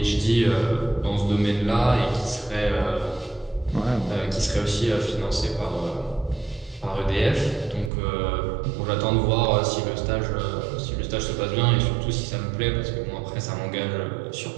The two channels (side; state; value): left; drops out; at 7.9 s